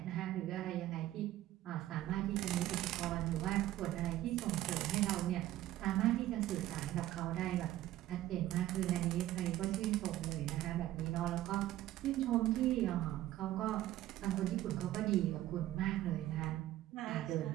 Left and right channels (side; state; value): left; quieter; 14.3 dB